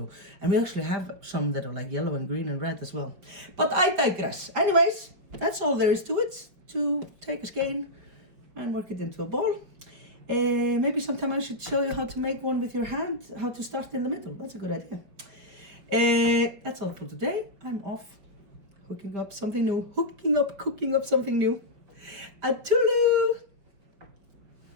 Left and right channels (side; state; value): left; late; 5.2 ms